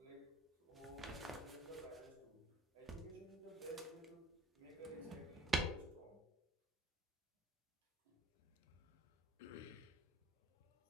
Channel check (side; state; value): both; normal; correlation 0.52